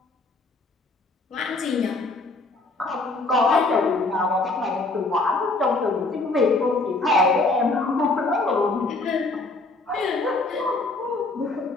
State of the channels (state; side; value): quieter; right; 3.3 dB